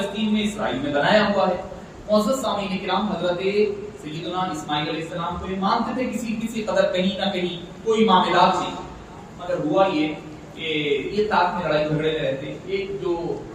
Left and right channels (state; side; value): identical; both; correlation 1.00